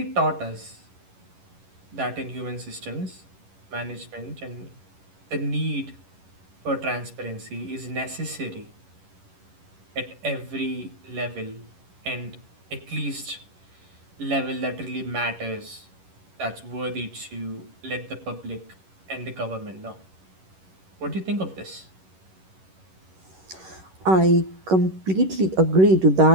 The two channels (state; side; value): late; left; 11 ms